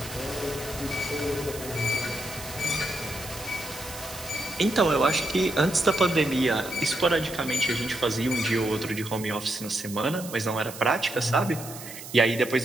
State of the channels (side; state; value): right; noise; hiss, 13 dB below the sound